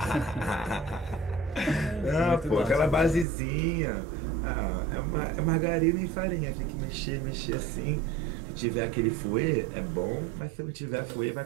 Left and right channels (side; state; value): left; drops out; at 3.2 s